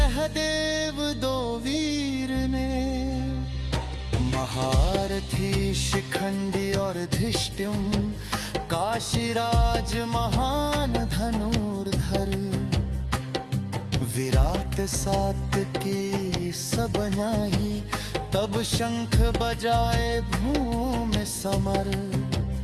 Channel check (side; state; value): both; identical; correlation 1.00